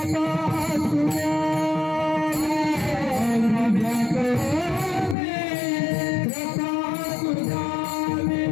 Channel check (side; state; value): right; drops out; at 5.2 s